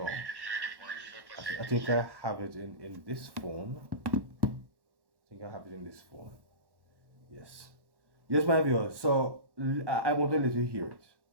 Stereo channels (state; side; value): late; left; 1.1 ms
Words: I think I have it in this phone. I think I have it in this phone. Yes. Yes, my viewers. So I want to let you hear it.